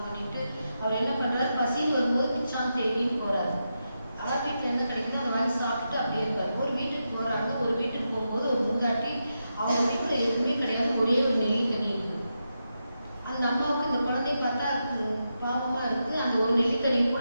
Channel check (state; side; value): inverted; both; correlation -0.87